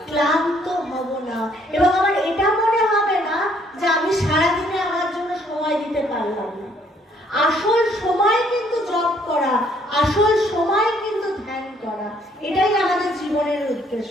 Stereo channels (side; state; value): both; normal; correlation 0.65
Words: ক্লান্ত হব না, এবং আমার এটা মনে হবে না যে আমি সারাদিনে আমার জন্য সময় দিতে পারলাম না। আসল সময় কিন্তু জপ করা, আসল সময় কিন্তু ধ্যান করা, এটাই আমাদের জীবনের